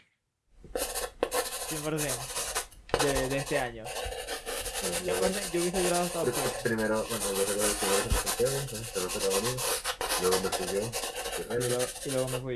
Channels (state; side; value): identical; both; correlation 1.00